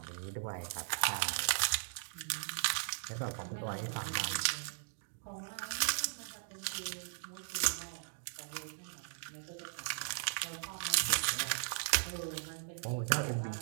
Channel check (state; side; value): silent; left; digital silence